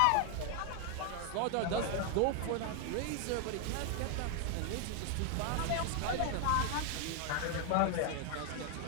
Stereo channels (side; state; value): both; different; correlation 0.01